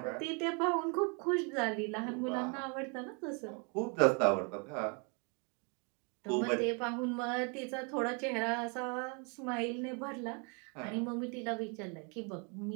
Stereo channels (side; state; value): left; quieter; 35.3 dB